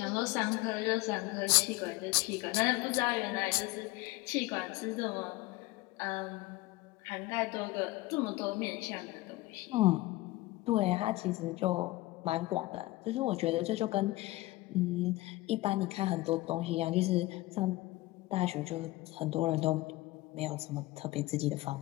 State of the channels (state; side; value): quieter; right; 19.6 dB